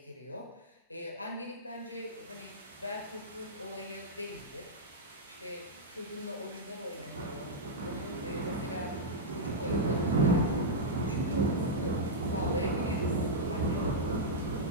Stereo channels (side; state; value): both; normal; correlation -0.08